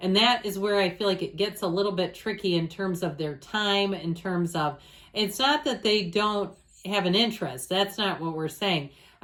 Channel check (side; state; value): both; identical; correlation 1.00